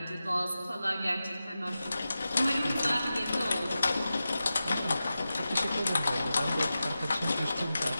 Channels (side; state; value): both; inverted; correlation -0.93